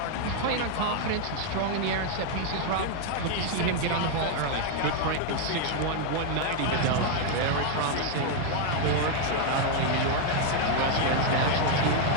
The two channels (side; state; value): both; different; correlation 0.00